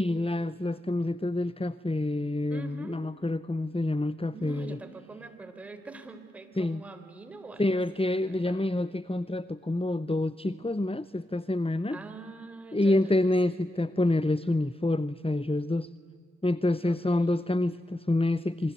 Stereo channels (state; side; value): normal; both; correlation 0.87